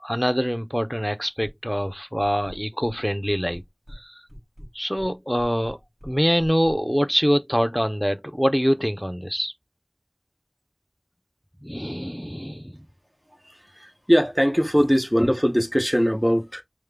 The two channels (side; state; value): both; identical; correlation 1.00